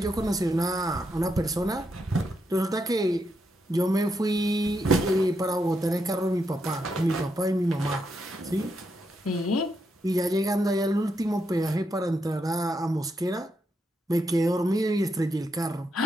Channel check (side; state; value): both; normal; correlation 0.82